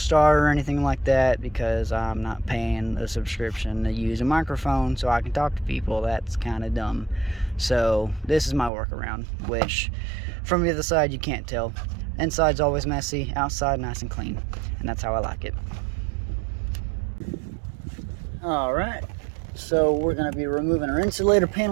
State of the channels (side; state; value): left; drops out; at 8.7 s